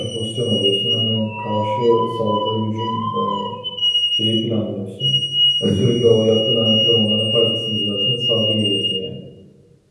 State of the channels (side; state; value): both; identical; correlation 1.00